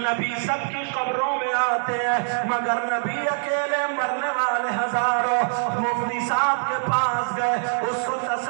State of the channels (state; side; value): silent; left; digital silence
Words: سب کی قبروں میں آتے ہیں مگر نبی اکیلے مرنے والے ہزاروں مفتی صاحب کے پاس گئے اس کو